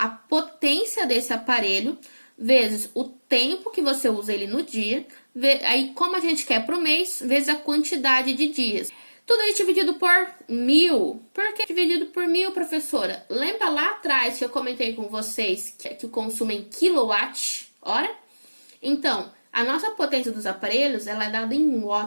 potência desse aparelho vezes o tempo que você usa ele no dia, aí como a gente quer para o mês, vezes a quantidade de dias. Tudo isso dividido por 1000. Por que dividido por 1000, professora? Lembra lá atrás que eu comentei com vocês que o consumo é em quilowatt-hora? Então, a nossa potência dos aparelhos ela é dada em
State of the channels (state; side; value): inverted; both; correlation -1.00